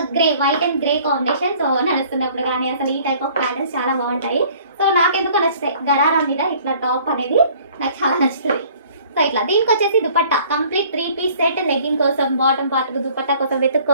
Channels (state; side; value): inverted; both; correlation -0.54